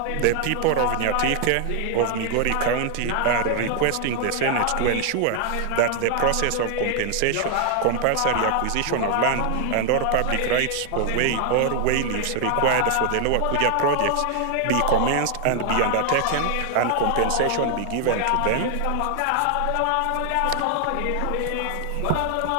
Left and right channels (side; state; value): both; different; correlation 0.00